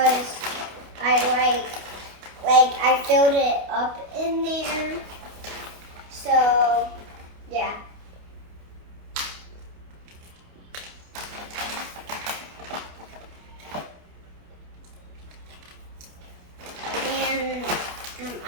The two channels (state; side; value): late; left; 28 ms